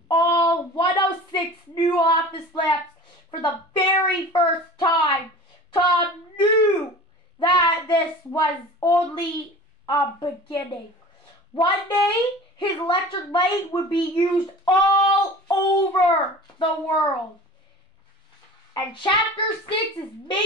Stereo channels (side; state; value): both; normal; correlation 0.39